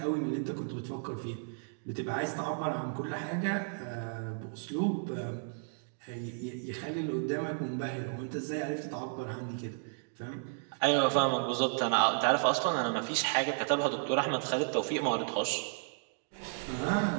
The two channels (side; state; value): left; silent; digital silence